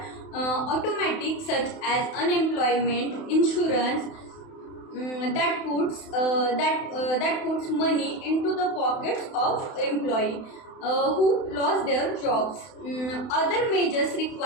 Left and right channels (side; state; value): right; late; 31 ms